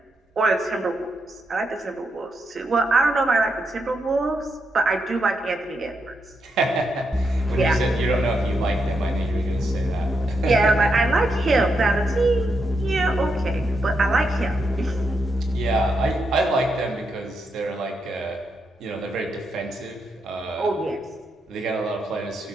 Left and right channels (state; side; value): normal; both; correlation 0.82